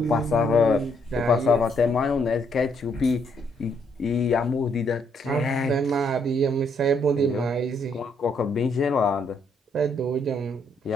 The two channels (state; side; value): normal; both; correlation 0.71